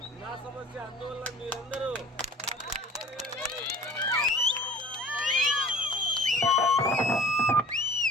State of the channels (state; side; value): normal; both; correlation 0.45